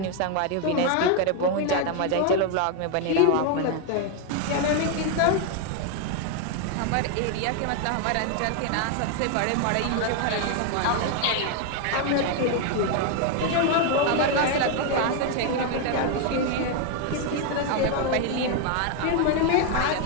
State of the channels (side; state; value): both; different; correlation 0.01